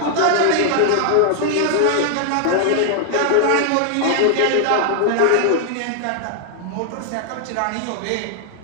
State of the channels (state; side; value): different; both; correlation 0.00